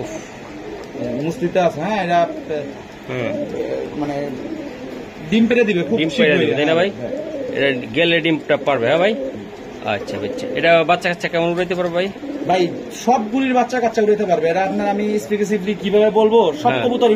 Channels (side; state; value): both; identical; correlation 1.00